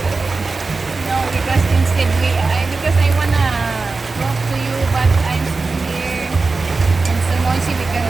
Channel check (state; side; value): quieter; left; 3.9 dB